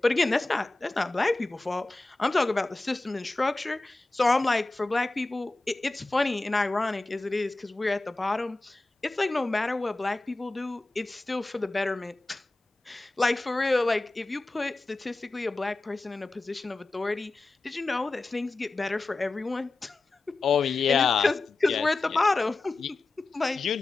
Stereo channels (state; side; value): quieter; right; 3.1 dB